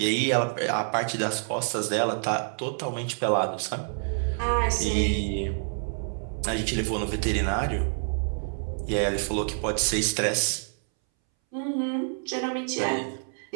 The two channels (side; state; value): left; silent; 60 dB below the other